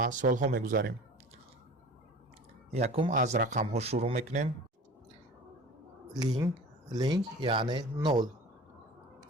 سال‌ها میگذاریم. یکم از رقم‌ها شروع میکنیم. لینگ یعنی نول.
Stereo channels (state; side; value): normal; both; correlation 0.40